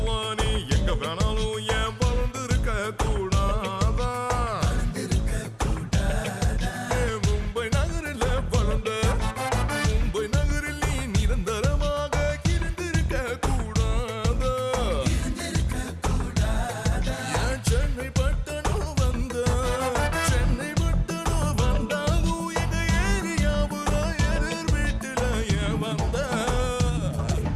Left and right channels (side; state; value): both; identical; correlation 1.00